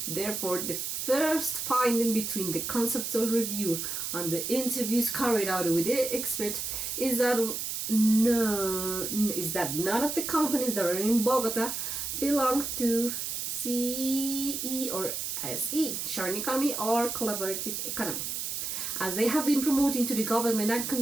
Therefore, the first finding between the conceptual review and the interviews carried out with the expert is that none of the companies that are in Bogota belong to CE or SE, sharing economy or collaborative economy, as they have been promoting to the government and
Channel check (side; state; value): right; noise; hiss, 3 dB below the sound